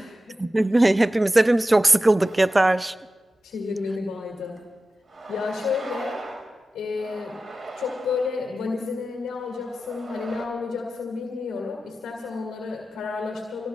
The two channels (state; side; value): normal; both; correlation 0.94